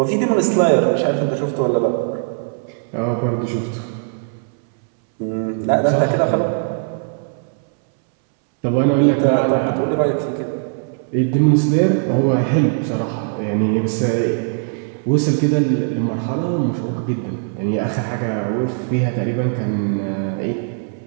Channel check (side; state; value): left; silent; 65 dB below the other